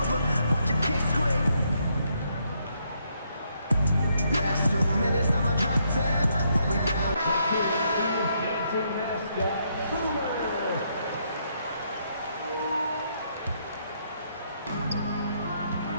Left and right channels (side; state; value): both; inverted; correlation -0.75